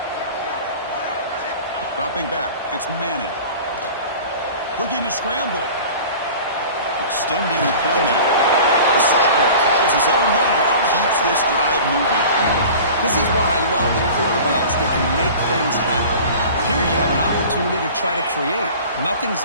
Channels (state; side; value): inverted; both; correlation -0.40